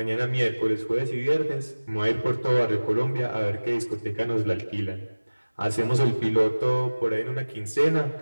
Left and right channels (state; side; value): inverted; both; correlation -1.00